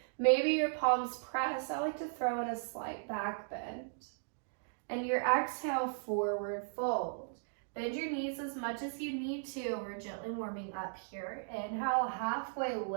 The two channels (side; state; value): left; silent; digital silence